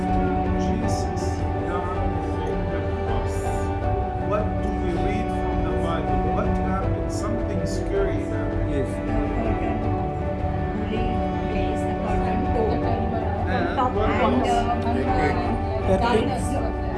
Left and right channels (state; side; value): identical; both; correlation 1.00